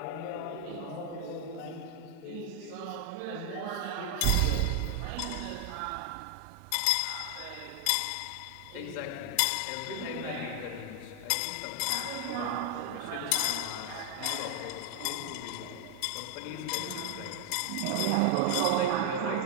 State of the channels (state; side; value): different; both; correlation 0.00